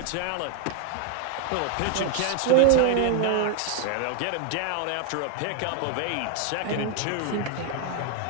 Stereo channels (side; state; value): both; different; correlation 0.00